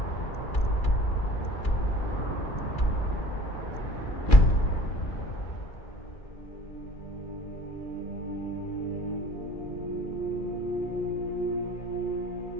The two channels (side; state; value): right; late; 2.3 ms